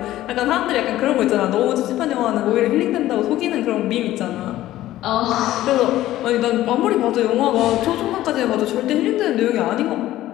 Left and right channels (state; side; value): quieter; right; 14.6 dB